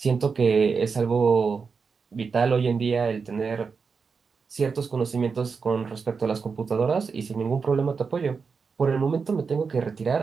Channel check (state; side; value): quieter; left; 5.3 dB